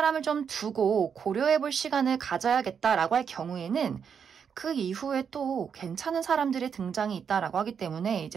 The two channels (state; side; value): quieter; left; 7.1 dB